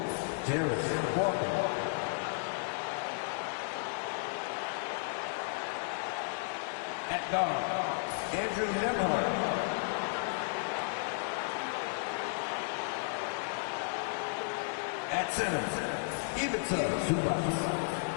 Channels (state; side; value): silent; right; digital silence